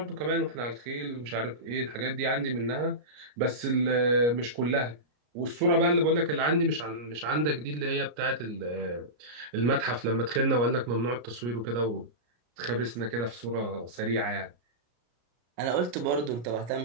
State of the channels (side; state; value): left; late; 33 ms